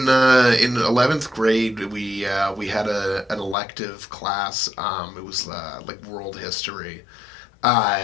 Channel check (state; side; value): drops out; right; at 3.6 s